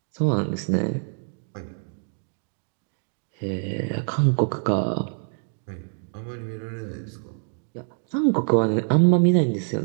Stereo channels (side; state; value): left; silent; digital silence